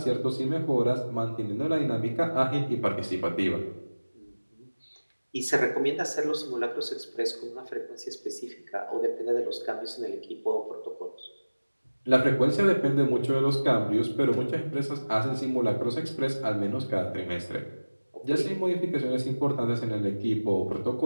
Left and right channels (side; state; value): both; inverted; correlation -1.00